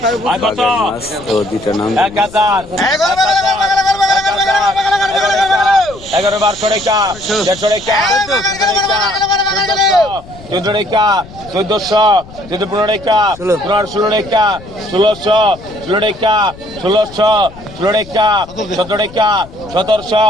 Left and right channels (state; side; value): noise; left; rumble, 19 dB below the sound